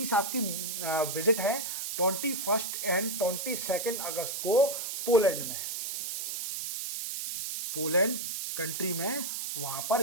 साहब की विजिट है 21 एंड 22 अगस्त को पोलैंड में, पोलैंड कंट्री में, वहाँ पर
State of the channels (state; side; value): noise; right; hiss, 4 dB below the sound